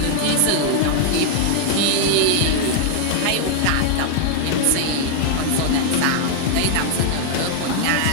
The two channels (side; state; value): both; different; correlation -0.01